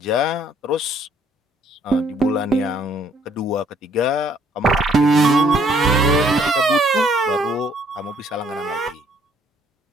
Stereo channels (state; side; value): normal; both; correlation 0.64